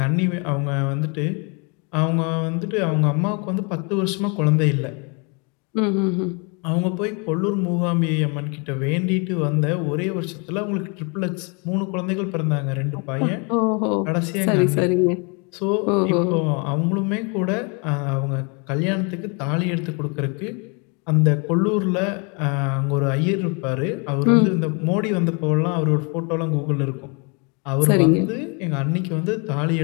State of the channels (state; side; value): quieter; right; 33.9 dB